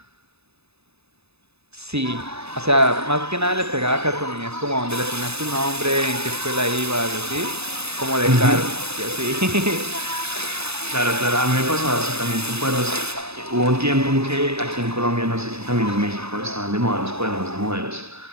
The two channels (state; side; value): late; left; 0.79 ms